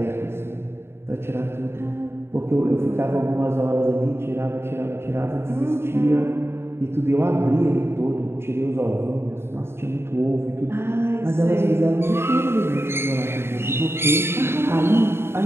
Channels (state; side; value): late; left; 0.12 ms